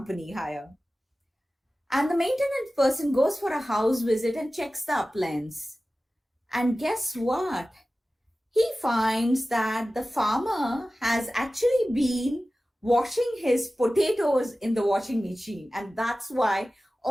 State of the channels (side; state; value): both; normal; correlation 0.96